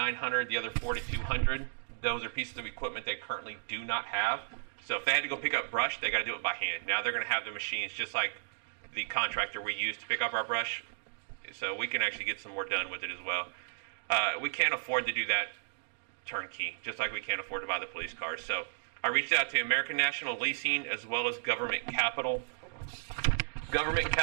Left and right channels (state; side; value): silent; left; digital silence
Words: the other $4,200. Those are pieces of equipment they currently do not have. So if they had to go pick up brush, they got to do it by hand. Now they're going to have the machines just like the contractor we use to pick up our brush. So we can actually get some more done with it as well. We can't afford to do that turnkey, just like we can't afford to buy the police cars. So I reached out to American National Leasing as well as Government Capital. Government